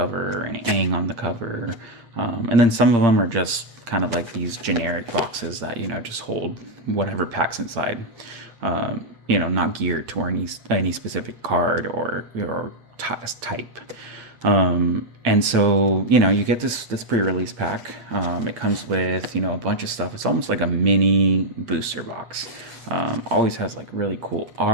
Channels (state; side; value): late; left; 8.6 ms